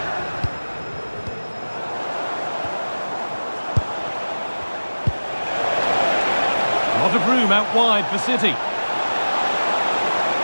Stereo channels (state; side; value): inverted; both; correlation -1.00